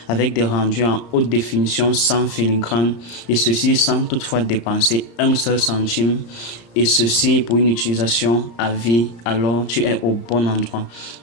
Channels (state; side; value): late; right; 35 ms